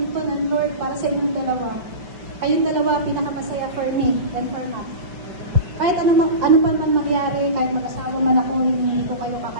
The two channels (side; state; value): left; late; 5.4 ms